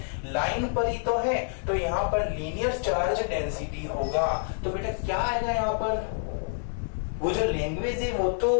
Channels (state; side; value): silent; right; digital silence